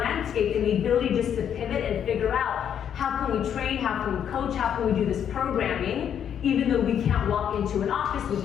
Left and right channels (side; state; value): right; quieter; 8.9 dB